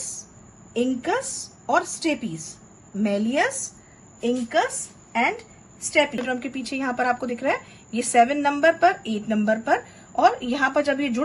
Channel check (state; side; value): identical; both; correlation 1.00